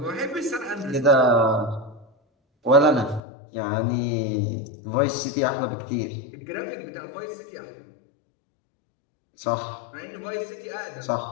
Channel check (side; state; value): right; drops out; at 3.2 s